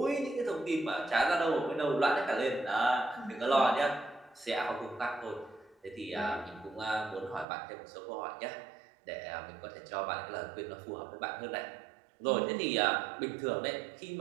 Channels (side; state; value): left; drops out; at 7.5 s